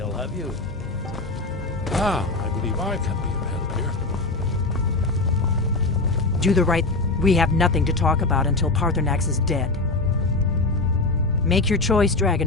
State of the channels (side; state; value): right; quieter; 3.3 dB